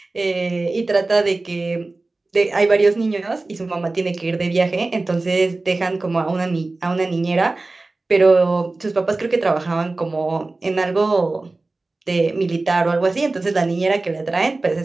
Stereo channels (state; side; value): quieter; left; 3.3 dB